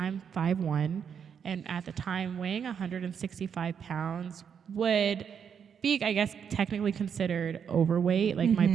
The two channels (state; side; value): quieter; left; 7.5 dB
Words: 5'1", and at the time weighing 165 pounds would be, I guess, technically considered overweight. Like my